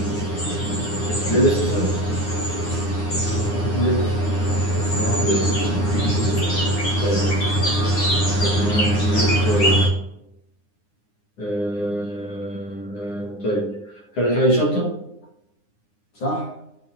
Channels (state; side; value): late; right; 9.7 ms